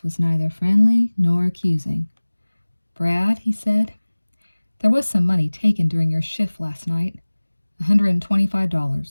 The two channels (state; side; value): inverted; both; correlation -1.00